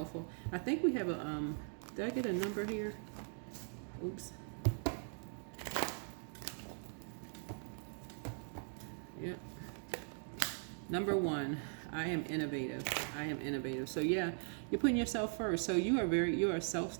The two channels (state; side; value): silent; left; 51 dB below the other